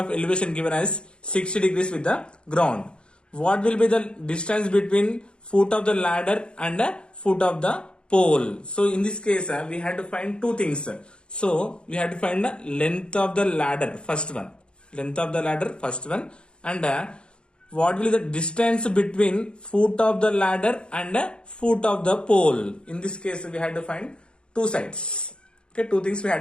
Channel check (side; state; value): right; late; 0.053 ms